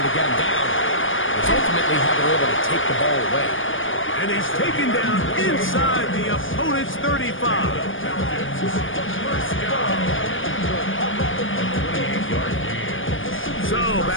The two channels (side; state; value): right; late; 0.57 ms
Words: to get him down, it's ultimately how they're able to take the ball away. And he's taken down inside the opponent's 35. So